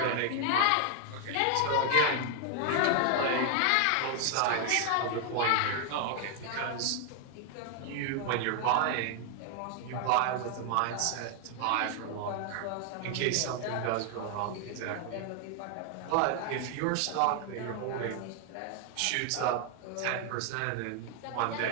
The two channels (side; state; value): both; different; correlation 0.00